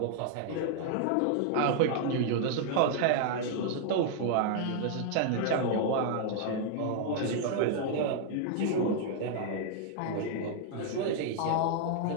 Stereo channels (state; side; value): different; both; correlation -0.01